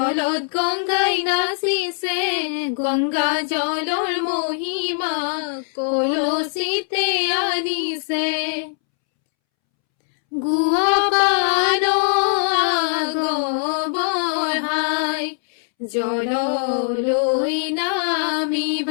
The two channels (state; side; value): silent; right; 65 dB below the other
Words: গংগাই নাচিছে গংগা জলৰ মহিমা কলচিতে আনিছে গুৱা পান আগবঢ়াই জললৈ